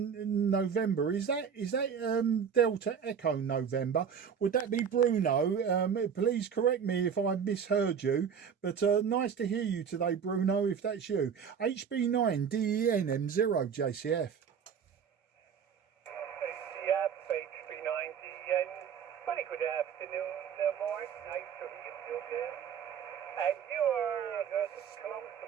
November. Is that Delta Echo November? Would that be Bruno? Please correct me if I misheard you, but nice to hear you today, Bruno, if that's you. HB9 DEN M0 JCF. Yep, HB9 DEN. Very good afternoon, Mark. Nice to hear you again. And you are close to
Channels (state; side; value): quieter; left; 7.3 dB